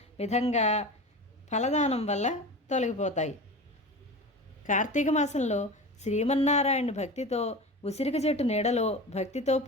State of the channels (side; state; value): both; normal; correlation 0.31